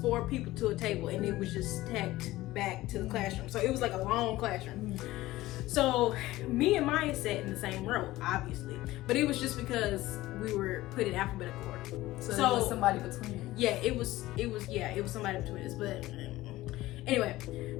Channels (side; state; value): right; quieter; 17.2 dB